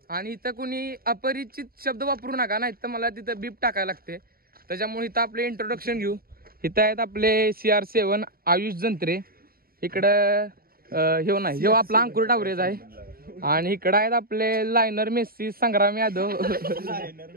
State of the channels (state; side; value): late; left; 0.43 ms